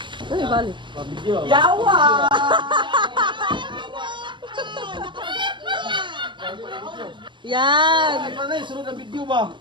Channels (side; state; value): left; late; 0.23 ms